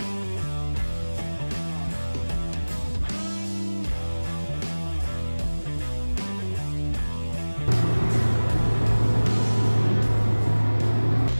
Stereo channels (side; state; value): both; inverted; correlation -1.00